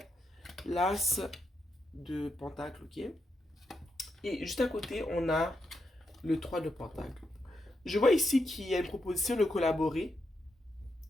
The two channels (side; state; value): both; normal; correlation 0.83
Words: l'as de pentacle, ok. Et juste à côté, on a le 3 de pentacle. Je vois ici qu'il y a une proposition de collaborer